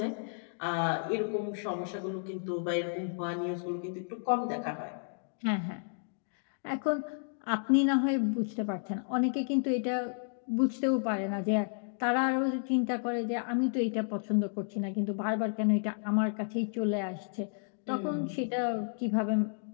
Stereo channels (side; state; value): right; silent; digital silence